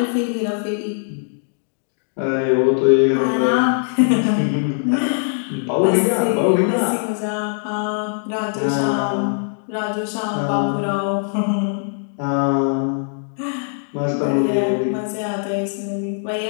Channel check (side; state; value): right; silent; digital silence